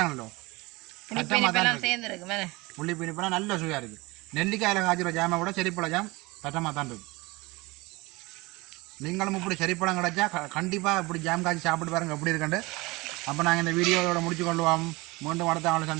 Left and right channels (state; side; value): quieter; left; 23.2 dB